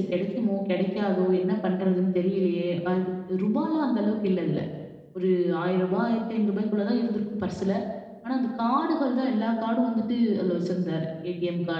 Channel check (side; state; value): both; identical; correlation 1.00